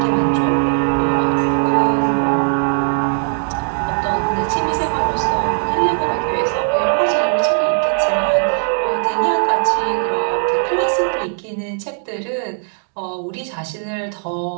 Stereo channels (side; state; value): left; silent; digital silence